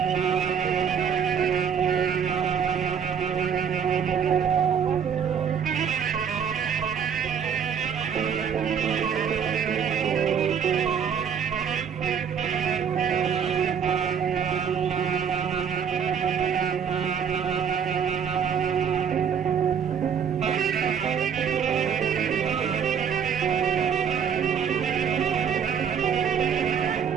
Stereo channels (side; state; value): left; quieter; 7.5 dB